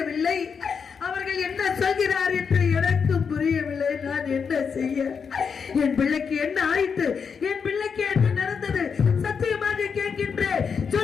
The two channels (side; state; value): right; quieter; 6.2 dB